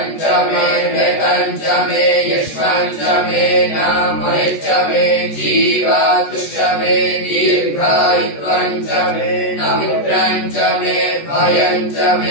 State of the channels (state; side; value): late; right; 14 ms